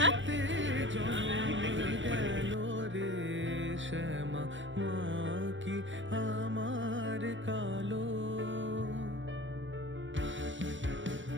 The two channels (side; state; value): left; late; 0.55 ms